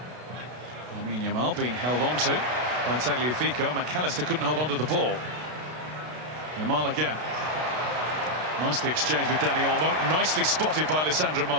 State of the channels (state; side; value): late; left; 32 ms